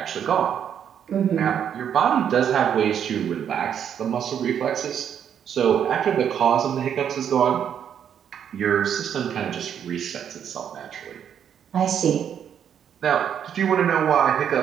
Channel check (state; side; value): quieter; left; 8.7 dB